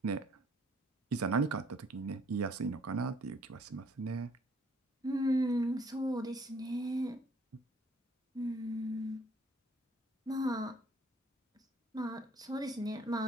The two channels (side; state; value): both; normal; correlation 0.61